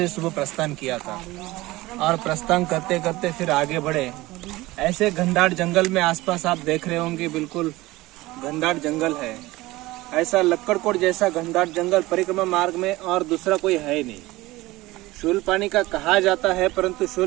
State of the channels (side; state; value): left; quieter; 19.3 dB